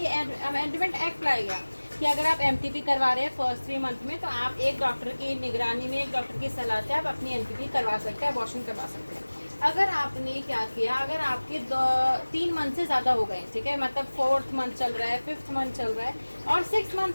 अमेंडमेंट एक्ट लाएगा कि अगर आप एमटीपी करवा रहे हैं फर्स्ट 3 मंथ में, तो आप एक डॉक्टर की निगरानी में, एक डॉक्टर की सलाह से आप अपनी एमटीपी करवा सकते हैं, अबॉर्शन करवा सकते हैं। अगर आपने क्या किया, अगर आपके 3 मंथ से ज़्यादा हो गए, ठीक है, मतलब 4th मंथ चल रहा है, 5th मंथ चल रहा है, और 6 मंथ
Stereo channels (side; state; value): both; inverted; correlation -1.00